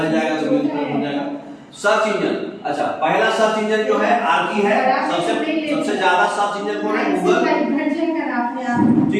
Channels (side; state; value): both; identical; correlation 1.00